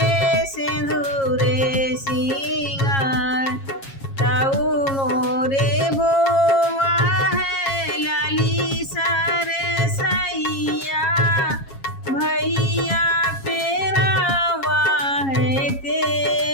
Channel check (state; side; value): late; right; 7.3 ms